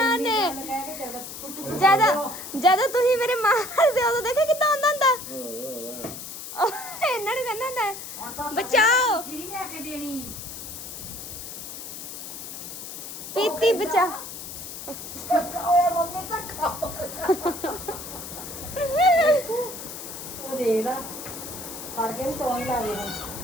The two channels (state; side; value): noise; left; hiss, 10 dB below the sound